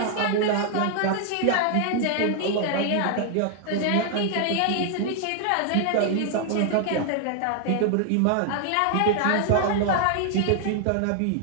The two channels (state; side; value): different; both; correlation 0.00